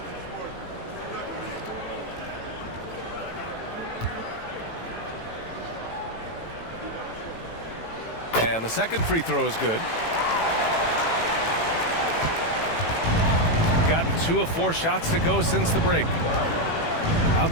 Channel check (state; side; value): late; right; 18 ms